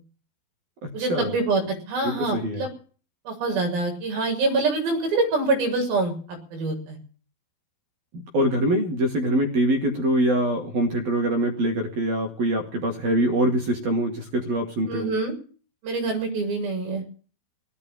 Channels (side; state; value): left; late; 12 ms